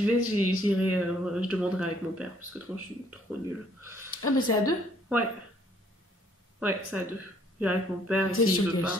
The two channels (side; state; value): both; normal; correlation 0.64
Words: vais, j'irai, je demanderai avec mon père, parce que je suis trop nulle. Ah mais c'est à 2? Ouais. Ouais, c'est à 2. J'irai avec mon père et C'est s'il sur veut pas.